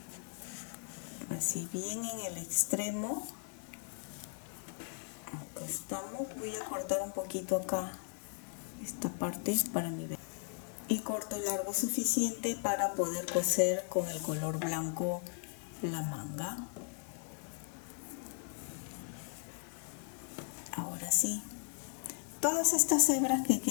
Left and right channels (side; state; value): right; silent; 53 dB below the other